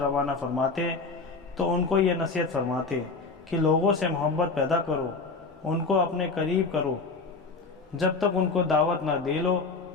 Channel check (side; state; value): right; quieter; 4.1 dB